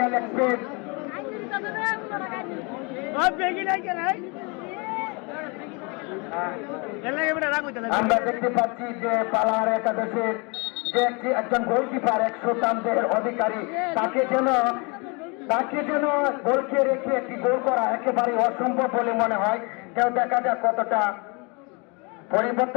ইলেকট্রিক। আমরা দেখতে পাচ্ছি যে পালার একাদশের যে একজন গোলকিপার 100 রানের অধিকারী, তাকে যেন গোলকে রেখে একটি গোল করা একেবারে অসম্ভব বলে মনে হয়। কেউ দেখা যাক কতটা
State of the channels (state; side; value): quieter; right; 30.5 dB